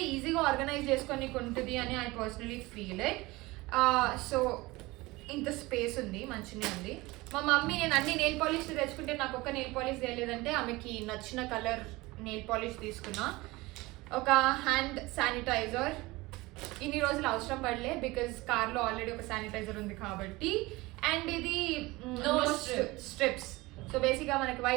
ఈజీగా ఆర్గనైజ్ చేసుకొని ఉంటుంది అని I personally feel it. So ఇంత స్పేస్ ఉంది, మంచిగా ఉంది. మా మమ్మీ నేను అన్ని నెయిల్ పాలిష్ తెచ్చుకుంటే నాకు ఒక్క నెయిల్ పాలిష్ తెలియదంటే ఆమెకి నచ్చిన కలర్ నెయిల్ పాలిష్ తీసుకున్నా. ఒక హ్యాండ్ శానిటైజర్. ఇన్ని రోజులు అవసరం పడలే బికాజ్ కార్లో ఆల్రెడీ ఒక శానిటైజర్ ఉంది కాబట్టి. అండ్ ఇది స్ట్రిప్స్. సో బేసిక్గా మనకి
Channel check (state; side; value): quieter; left; 21.4 dB